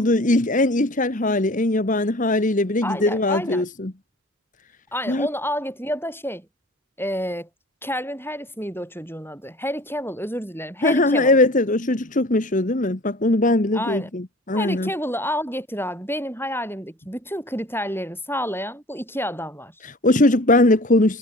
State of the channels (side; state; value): both; normal; correlation 0.43